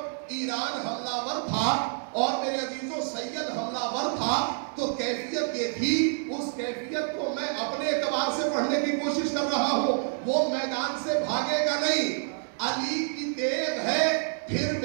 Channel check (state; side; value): silent; left; digital silence